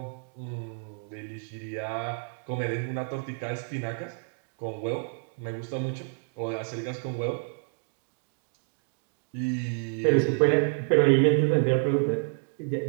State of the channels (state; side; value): silent; left; 59 dB below the other